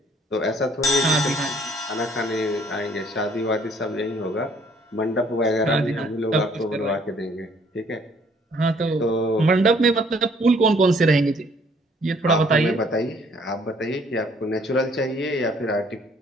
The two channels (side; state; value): both; normal; correlation 0.62